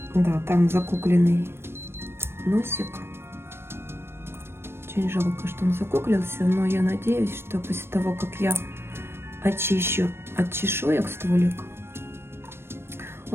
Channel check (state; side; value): late; left; 0.12 ms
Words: Да, там закукленный носик. Очень жалко, что он закуклился, но я надеюсь, что после того, как я очищу от чешуек стволик,